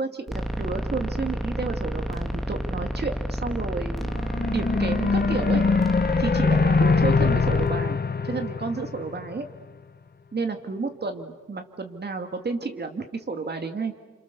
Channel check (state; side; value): normal; both; correlation 0.69